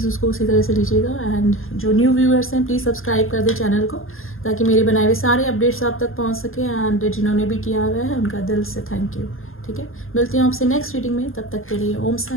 उसको उसी तरह से लीजिएगा। एंड जो न्यू व्यूअर्स हैं प्लीज़ सब्सक्राइब कर दें चैनल को, ताकि मेरे बनाए हुए सारे अपडेट्स आप तक पहुंच सके। एंड जिन्होंने भी किया हुआ है उनका दिल से थैंक यू। ठीक है, मिलती हूँ आपसे नेक्स्ट रीडिंग में, तब तक के लिए ओम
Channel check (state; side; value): late; right; 0.60 ms